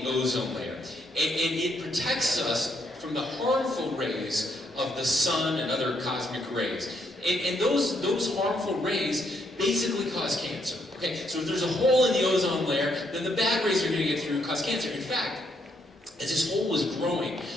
ozone layer. And it protects us from the harmful rays of the sun and other cosmic rays. And those harmful rays basically cause cancer. Okay, so if there's a hole in the ozone layer, then the bad rays are going to get through and cause cancer. In fact, as this hole was growing,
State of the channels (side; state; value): both; normal; correlation 0.74